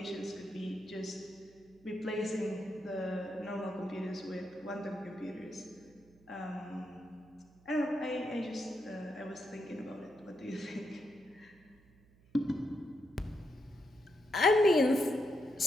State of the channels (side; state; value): right; noise; hum, 28 dB below the sound